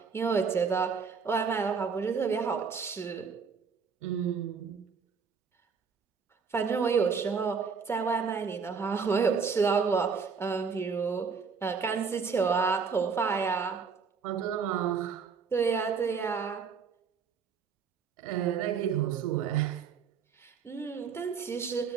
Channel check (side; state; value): left; quieter; 5.7 dB